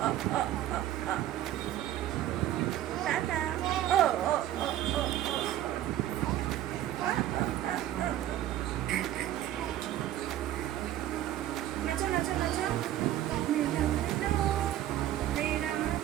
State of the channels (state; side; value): quieter; left; 12.8 dB